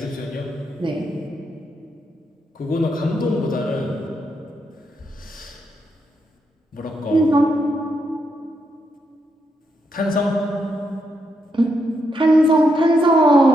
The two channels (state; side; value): normal; both; correlation 0.80